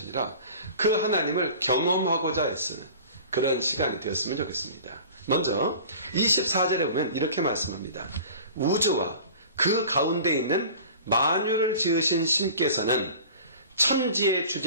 그 하나님을 경험하고자 애쓰는 그런 시간이 되었으면 좋겠습니다. 먼저 24절에 보면 이렇게 말씀합니다. 우주와 그 가운데 있는 만유를 지으신 신께서는 천지의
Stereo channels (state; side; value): inverted; both; correlation -0.41